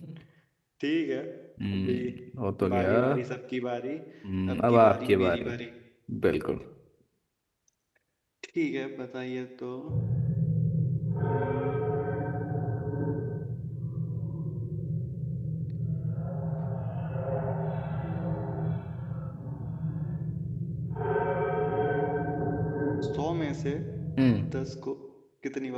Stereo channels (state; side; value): identical; both; correlation 1.00